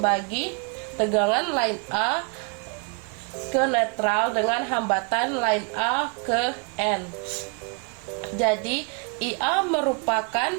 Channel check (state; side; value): quieter; left; 35.5 dB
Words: tegangan line A ke netral dengan hambatan line A ke N. Jadi IA merupakan